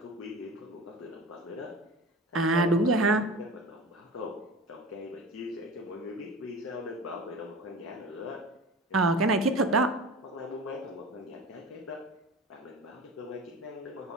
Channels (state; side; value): normal; both; correlation 0.34